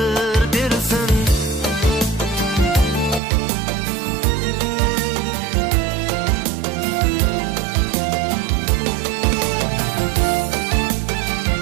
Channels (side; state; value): left; drops out; at 3.2 s